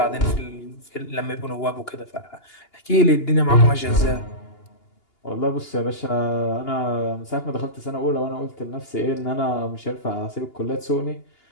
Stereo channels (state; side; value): late; right; 2.8 ms